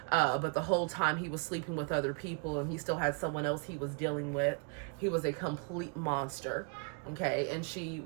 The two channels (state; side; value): quieter; left; 36.5 dB